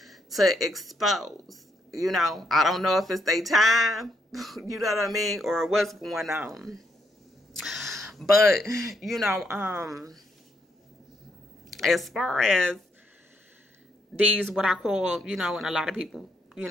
to expose. I don't know if it's their time, you know what I mean, or what's going on. But, as far as these, what I call, and a lot of people,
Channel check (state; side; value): normal; both; correlation 0.75